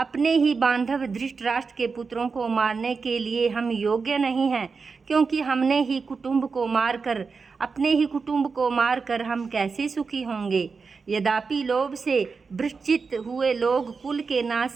ही बांधव धृतराष्ट्र के पुत्रों को मारने के लिए हम योग्य नहीं हैं, क्योंकि अपने ही कुटुंब को मारकर हम कैसे सुखी होंगे। यद्यपि लोभ से भ्रष्ट हुए लोग कुल के नाश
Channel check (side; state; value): left; quieter; 4.9 dB